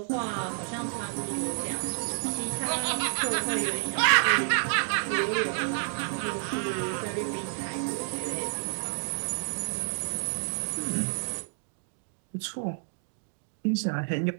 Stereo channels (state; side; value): silent; left; digital silence